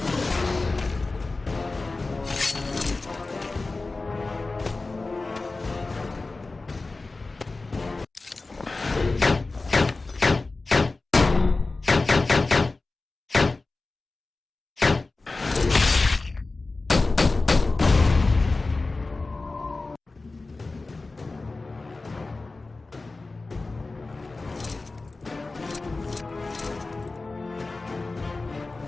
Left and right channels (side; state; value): right; quieter; 3.5 dB